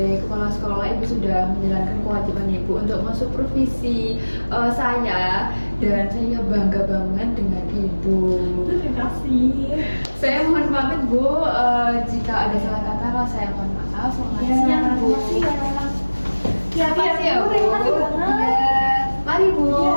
kepala sekolah, Ibu sudah menjalankan kewajiban Ibu untuk mensupervisi saya, dan saya bangga banget dengan Ibu. Terima kasih. Saya mohon pamit Bu, jika ada salah kata saya mohon maaf. Selamat Ya, siang Bu. Terima kasih ya Bu. Terima kasih banget. Ya, mari Bu.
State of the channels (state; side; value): inverted; both; correlation -1.00